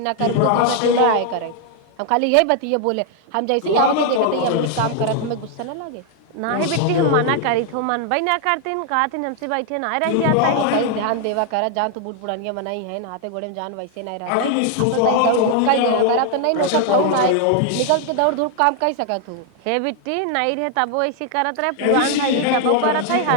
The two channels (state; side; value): different; both; correlation 0.00